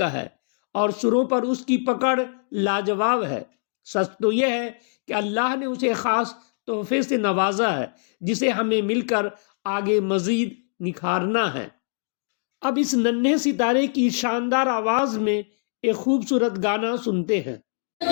है और सुरों पर उसकी पकड़ लाजवाब है। सच तो यह है कि अल्लाह ने उसे खास तोहफे से नवाजा है, जिसे हमें मिलकर आगे मजीद निखारना है। अब इस नन्हे सितारे की शानदार आवाज में एक खूबसूरत गाना सुनते हैं।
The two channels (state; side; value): silent; right; digital silence